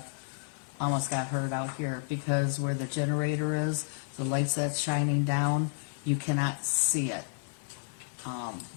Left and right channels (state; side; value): silent; right; 55 dB below the other